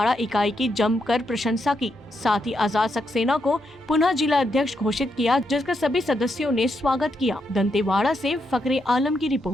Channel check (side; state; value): both; normal; correlation 0.81